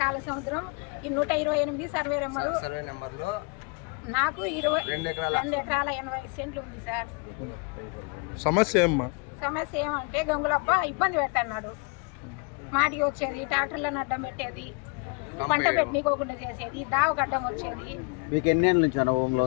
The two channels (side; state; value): right; quieter; 33.5 dB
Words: కాలసముద్రం ఈ 128 సర్వే నెంబర్లో నాకు 2 ఎకరాల 80 సెంట్లు ఉంది సార్. సమస్య ఏమంటే గంగులప్ప ఇబ్బంది పెట్టన్నాడు. మాటికి వచ్చేది, ట్రాక్టర్లను అడ్డం పెట్టేది, పంట పెట్టనీకోకుండా చేసేది, దావగడ్డం వచ్చేది. మీకు ఎన్ని ఏళ్ళ నుంచి అనుభవంలో